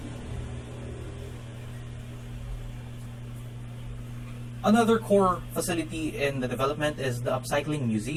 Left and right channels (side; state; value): both; identical; correlation 1.00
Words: Another core facility in the development is the Upcycling